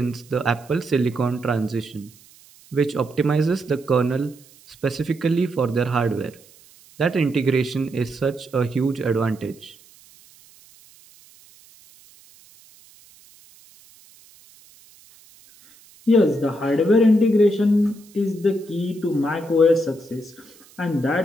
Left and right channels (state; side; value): noise; right; hiss, 26 dB below the sound